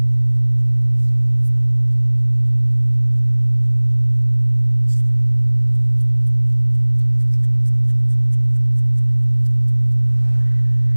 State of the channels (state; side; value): inverted; both; correlation -1.00